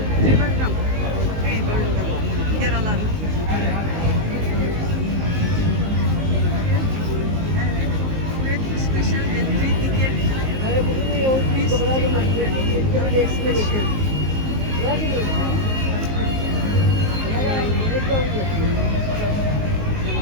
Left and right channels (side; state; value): left; late; 19 ms